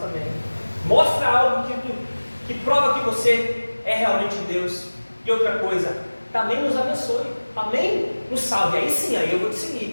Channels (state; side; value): inverted; both; correlation -1.00